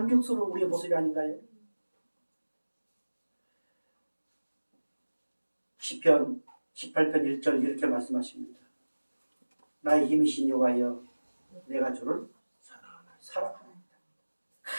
우리의 모습이 아닌가요? 시편 18편 1절 이렇게 말씀하십니다. 나의 힘이신 여호와여, 내가 주를 사랑하나이다.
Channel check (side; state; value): both; inverted; correlation -1.00